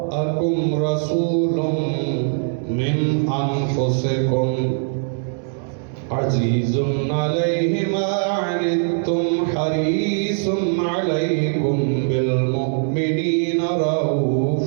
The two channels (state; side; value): silent; left; 65 dB below the other